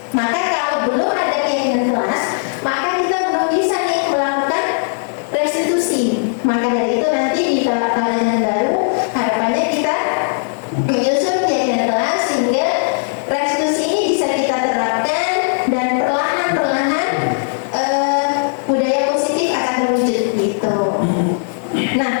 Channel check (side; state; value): right; silent; digital silence